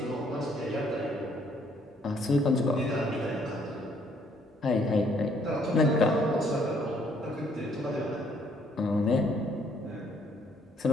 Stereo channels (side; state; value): both; normal; correlation 0.66